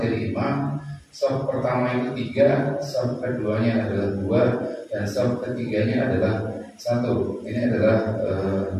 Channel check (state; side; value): identical; both; correlation 1.00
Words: imam. Saf pertama itu 3, saf keduanya adalah 2, dan saf ketiganya adalah 1. Ini adalah